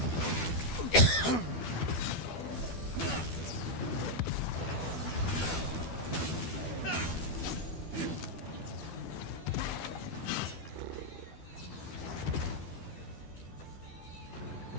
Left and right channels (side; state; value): right; late; 12 ms